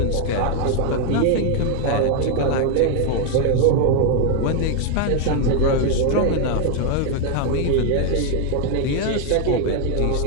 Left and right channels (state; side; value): different; both; correlation 0.01